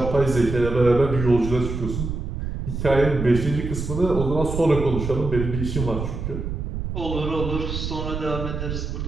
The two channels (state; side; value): noise; right; rumble, 4 dB below the sound